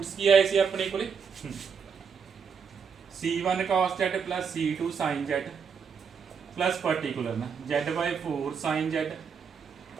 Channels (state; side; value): quieter; left; 6.4 dB